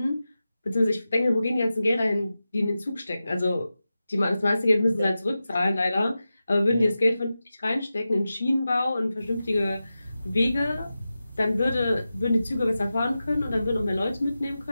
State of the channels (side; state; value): both; inverted; correlation -0.93